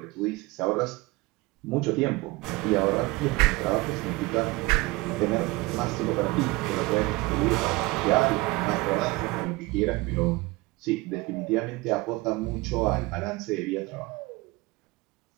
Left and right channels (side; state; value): left; quieter; 22.2 dB